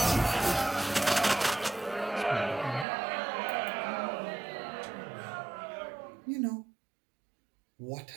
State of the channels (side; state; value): left; drops out; at 2.9 s